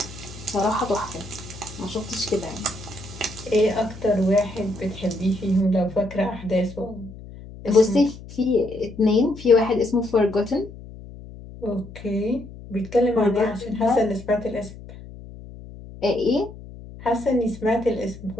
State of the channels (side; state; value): left; noise; hum, 15 dB below the sound